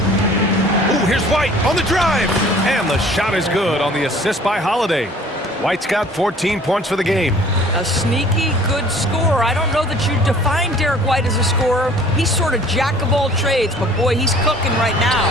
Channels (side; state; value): both; normal; correlation 0.51